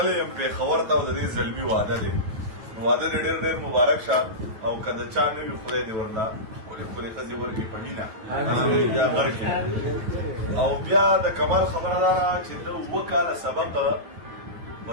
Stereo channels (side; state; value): left; late; 9.2 ms